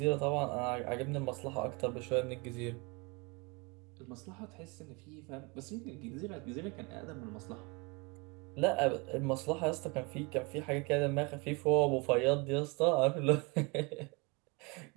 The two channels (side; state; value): left; quieter; 28.8 dB